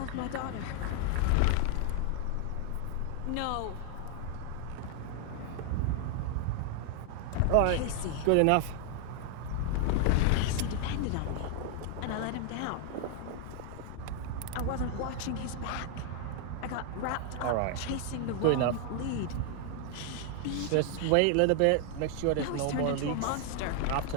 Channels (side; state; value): both; different; correlation 0.00